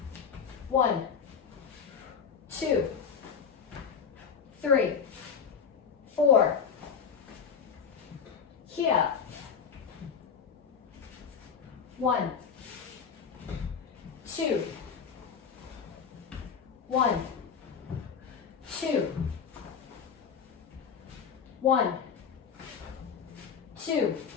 1, 2, 3, 4. Here. 1, 2, 1, 2, 1, 2,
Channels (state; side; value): quieter; right; 6.6 dB